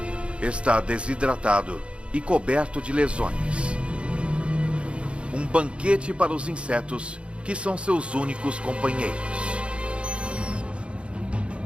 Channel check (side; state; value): left; late; 0.058 ms